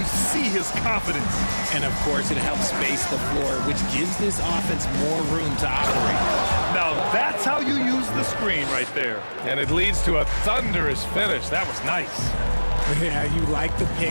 see his confidence. And of course, it helps space the floor, which gives this offense more room to operate. Now that's how you use the screen right there. And it leads to a thunderous finish. That was nice. Yeah, you like the pick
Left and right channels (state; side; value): inverted; both; correlation -1.00